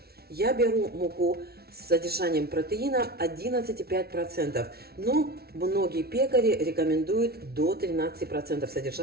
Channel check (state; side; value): late; left; 0.45 ms